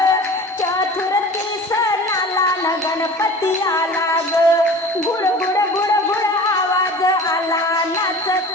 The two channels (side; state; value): both; normal; correlation 0.40